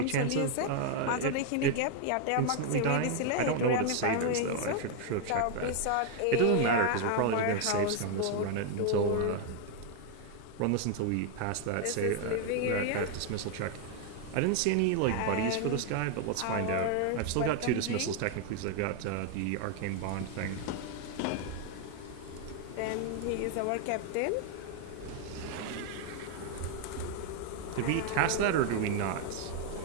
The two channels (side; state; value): both; different; correlation 0.01